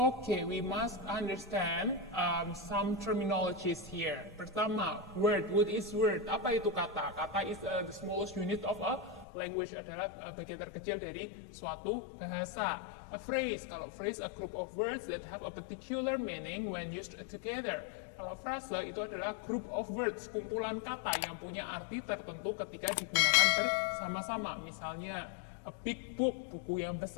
we must understand some terminologies here. Pertama, word. What is word? Apa itu kata? Kata is the smallest unit of a language, adalah bagian terkecil dari suatu bahasa. A phrase. Kalau phrase, a group of words that have a particular meaning when used together. Kalau frase itu adalah group of words, kumpulan kata yang punya arti tertentu ketika digunakan bersama-sama. Misalnya, a big book, buku yang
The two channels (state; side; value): drops out; right; at 9.2 s